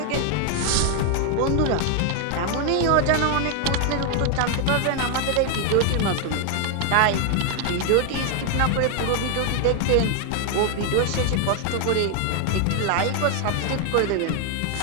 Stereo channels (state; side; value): different; both; correlation 0.00